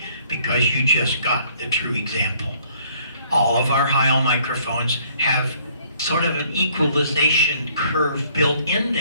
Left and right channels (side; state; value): both; inverted; correlation -0.61